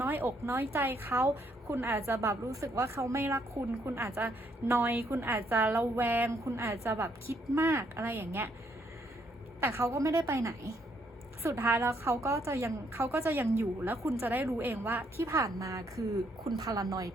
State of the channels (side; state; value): both; normal; correlation 0.71